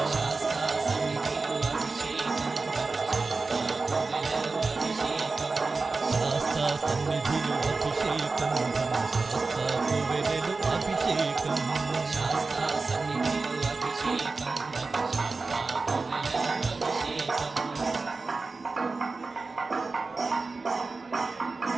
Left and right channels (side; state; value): left; quieter; 3.9 dB